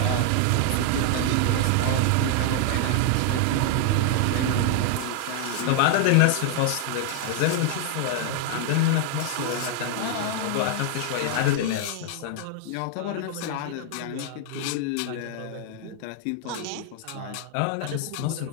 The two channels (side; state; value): both; different; correlation 0.00